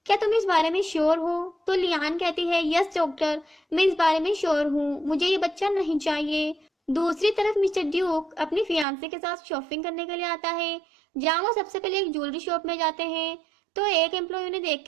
क्या तुम इस बारे में श्योर हो। तो लियान कहती है, यस डॉक्टर, मैं इस बारे में श्योर हूँ, मुझे ये बच्चा नहीं चाहिए। दूसरी तरफ मिस्टर ड्यूक अपनी फियांसे के साथ शॉपिंग करने के लिए आता है, जहाँ वो सबसे पहले एक ज्वेलरी शॉप में जाते हैं। तो एक एम्प्लॉय उन्हें देख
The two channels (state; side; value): drops out; left; at 8.8 s